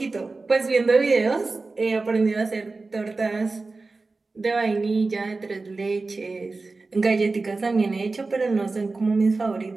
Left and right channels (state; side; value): quieter; left; 3.7 dB